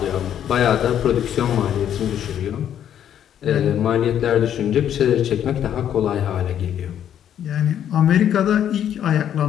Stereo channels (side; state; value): right; quieter; 9.9 dB